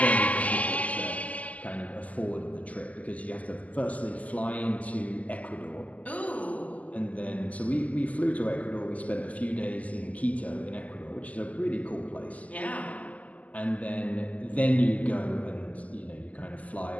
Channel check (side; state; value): right; late; 0.073 ms